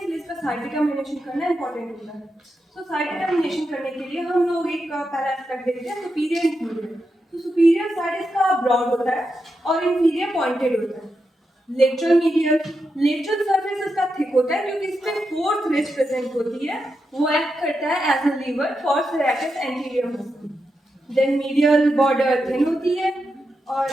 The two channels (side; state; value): both; normal; correlation 0.86